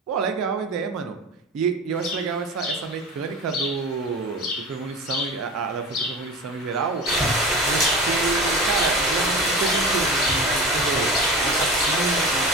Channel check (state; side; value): normal; both; correlation 0.31